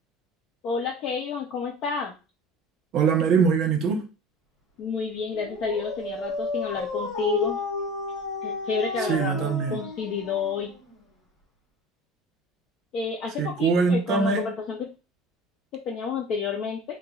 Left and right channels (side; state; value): both; normal; correlation 0.38